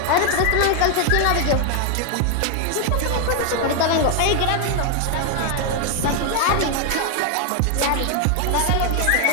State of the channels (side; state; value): both; different; correlation 0.01